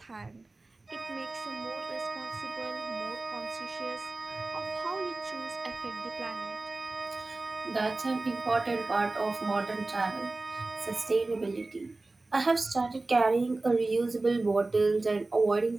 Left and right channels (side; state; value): left; quieter; 3.2 dB